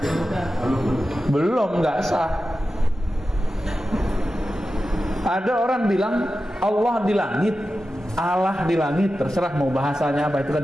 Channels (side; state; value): both; normal; correlation 0.92